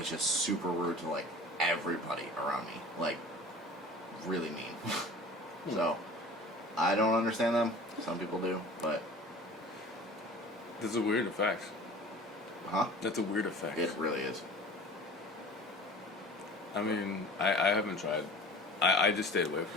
just super rude to like everybody around me, like really mean. So I don't understand them. Some people do, but That's a weird effect. huh? That's a weird effect. It really is. I mean, I haven't tried. I just stayed away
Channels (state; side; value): normal; both; correlation 0.42